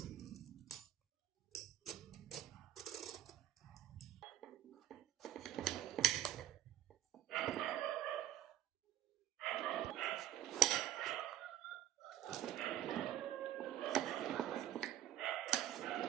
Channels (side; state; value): left; quieter; 11.9 dB